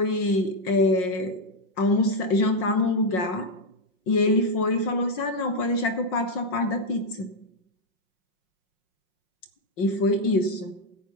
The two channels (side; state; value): right; late; 5.5 ms